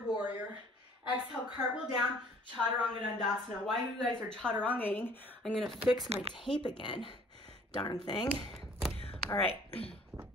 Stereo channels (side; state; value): both; normal; correlation 0.55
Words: warrior. Exhale, cartwheel down, chaturanga dandasana. While you guys are chaturangaing, I'm gonna fix my tape again. Darn thing. All right,